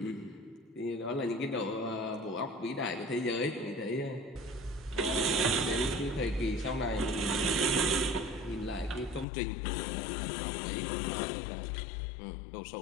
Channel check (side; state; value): right; drops out; at 9.2 s